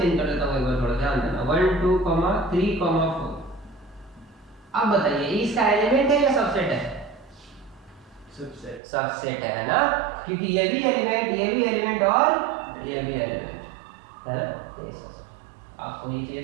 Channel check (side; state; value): left; drops out; at 8.8 s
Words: कर देता हूँ, एक बार थोड़ा ध्यान देना। 1 2 3 4 अब बताइए इसका एलिमेंट है या सबसेट है? सबसेट। सबसेट है ना, क्योंकि ये भी एलिमेंट, ये भी एलिमेंट और ये भी एलिमेंट है ना। आपको ये